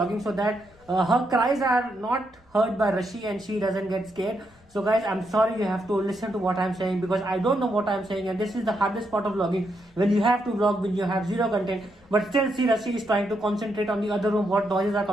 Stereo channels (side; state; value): left; noise; rumble, 30 dB below the sound